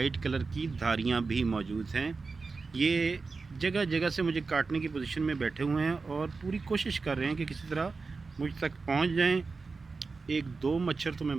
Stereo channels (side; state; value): left; quieter; 4.3 dB